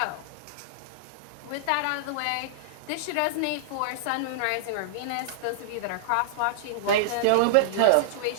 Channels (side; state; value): both; different; correlation -0.01